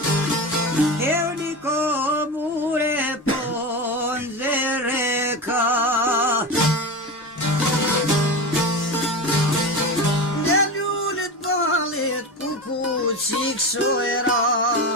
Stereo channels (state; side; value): normal; both; correlation 0.23